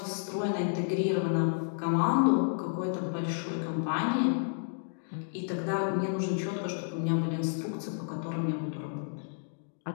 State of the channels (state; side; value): silent; right; digital silence